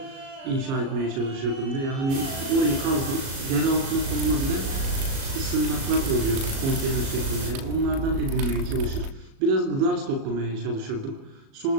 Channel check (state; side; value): late; left; 37 ms